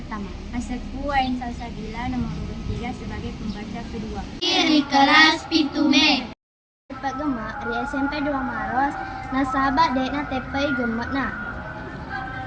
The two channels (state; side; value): identical; both; correlation 1.00